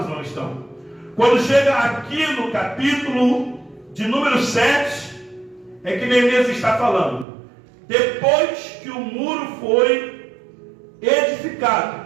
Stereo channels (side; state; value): left; drops out; at 7.2 s